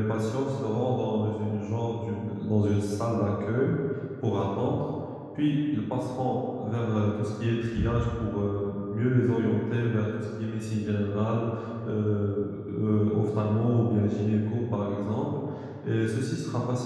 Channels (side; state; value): both; identical; correlation 1.00